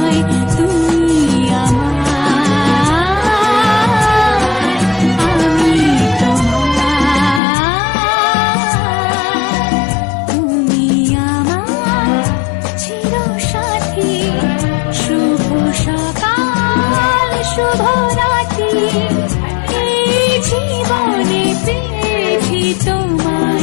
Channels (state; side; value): drops out; right; at 7.4 s